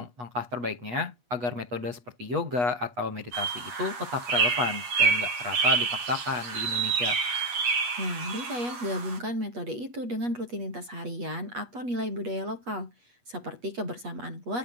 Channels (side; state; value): left; late; 8.4 ms